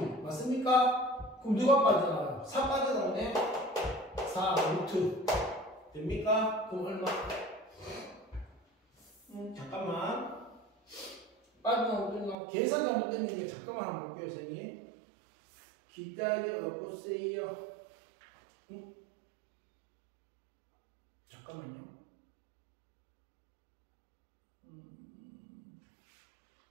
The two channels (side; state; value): left; drops out; at 12.4 s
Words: 맞습니까? 그럼 누가 빠져나가요? 4 빠져나오네? 4 루트 됩니까? 그럼 얼마? 잠깐만 빠져나오고 계산 잘못된 게 잠깐만 한번 볼게요 선생님. 기다려 보세요. 잠깐만요.